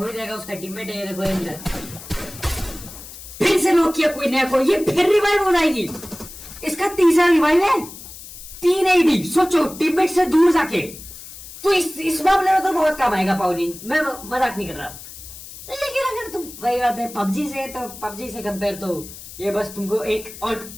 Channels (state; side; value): noise; left; hiss, 15 dB below the sound